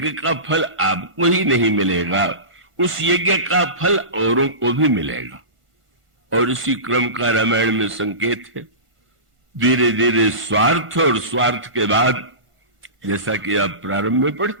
का फल आपको ही नहीं मिलेगा, उस यज्ञ का फल औरों को भी मिलेगा। और इसी क्रम का रामायण में संकेत है। धीरे धीरे स्वार्थ, और स्वार्थ के बाद जैसा कि आप प्रारंभ में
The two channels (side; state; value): left; late; 1.5 ms